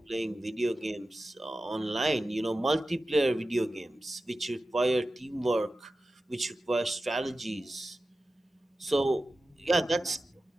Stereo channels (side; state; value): both; normal; correlation 0.94